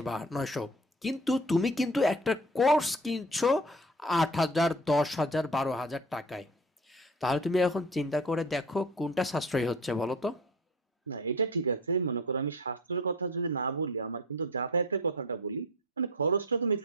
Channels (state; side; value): normal; both; correlation 0.40